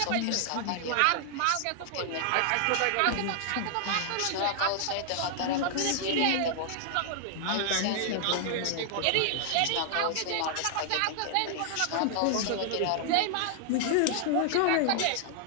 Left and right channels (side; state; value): both; different; correlation -0.01